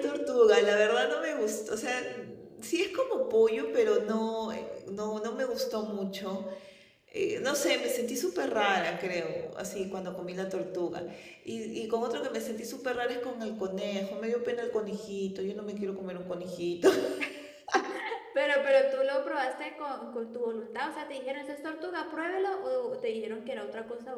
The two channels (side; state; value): both; identical; correlation 1.00